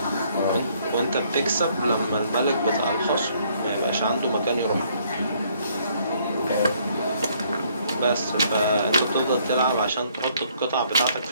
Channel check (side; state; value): both; inverted; correlation -0.65